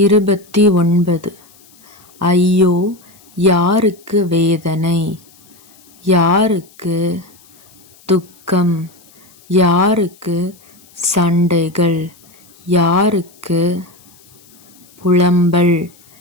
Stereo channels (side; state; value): left; noise; hiss, 28 dB below the sound